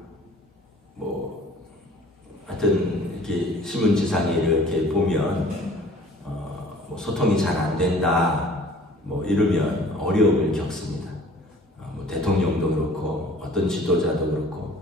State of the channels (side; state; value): both; normal; correlation 0.51